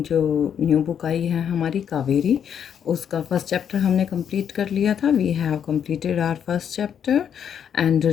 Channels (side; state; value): right; quieter; 8.4 dB